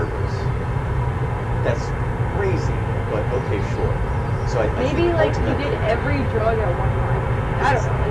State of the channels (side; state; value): both; identical; correlation 1.00